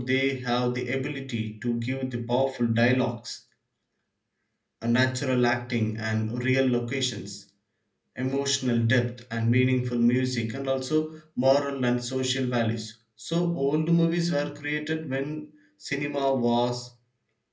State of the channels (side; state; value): both; identical; correlation 1.00